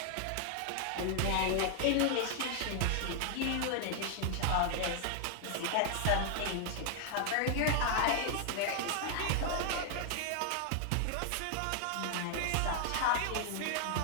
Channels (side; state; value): both; different; correlation 0.00